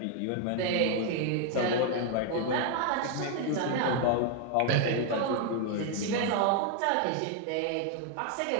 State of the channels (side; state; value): both; different; correlation 0.00